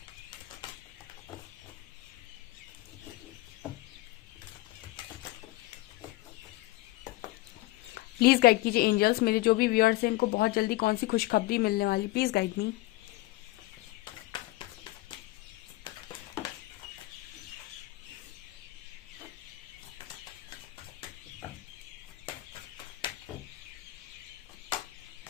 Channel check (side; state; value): right; quieter; 19.1 dB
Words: प्लीज गाइड कीजिए एंजल्स, मेरे जो भी व्यूअर्स हैं इनको बहुत जल्दी कौन सी खुशखबरी मिलने वाली, please guide me.